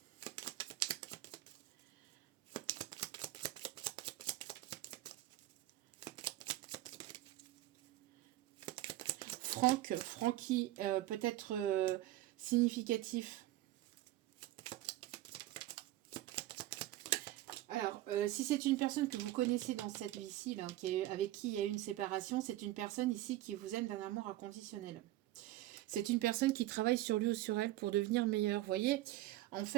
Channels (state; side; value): quieter; left; 15.6 dB